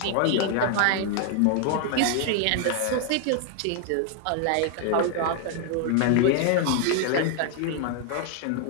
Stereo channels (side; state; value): both; different; correlation 0.00